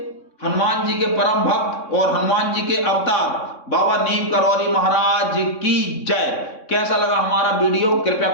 हनुमान जी के परम भक्त और हनुमान जी के अवतार बाबा नीव करौरी महाराज की जय। कैसा लगा हमारा वीडियो कृपया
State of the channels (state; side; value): late; right; 3.6 ms